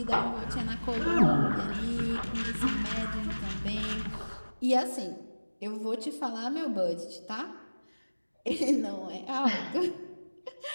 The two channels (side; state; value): both; inverted; correlation -1.00